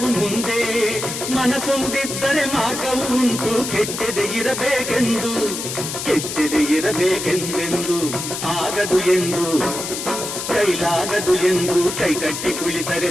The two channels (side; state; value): left; noise; hiss, 5 dB below the sound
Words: ಮುಂದೆ. ಮನಸೊಂದಿದ್ದರೆ ಮಾರ್ಗವು ಉಂಟು, ಕೆಚ್ಚದೆ ಇರಬೇಕೆಂದು, ಕೆಚ್ಚದೆ ಇರಬೇಕೆಂದೆಂದು. ಆಗದು ಎಂದು ಕೈಲಾಗದು ಎಂದು ಕೈಗಟ್ಟಿ ಕುಳಿತರೆ